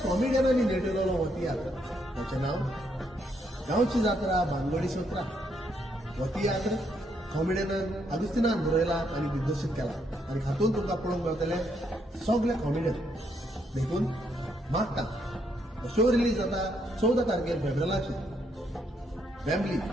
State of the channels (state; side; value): normal; both; correlation 0.75